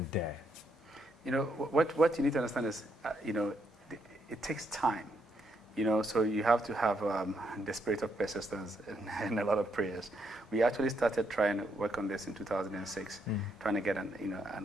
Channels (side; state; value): both; normal; correlation 0.76